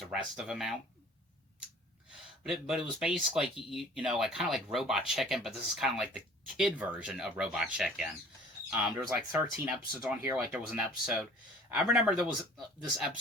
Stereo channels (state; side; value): normal; both; correlation 0.48